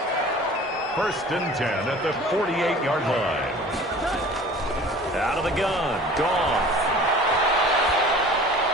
1st and 10 at the 48-yard line. Out of the gun, Goff.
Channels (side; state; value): both; normal; correlation 0.44